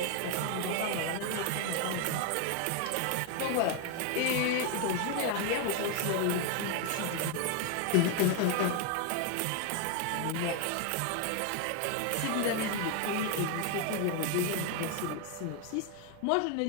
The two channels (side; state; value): both; different; correlation 0.01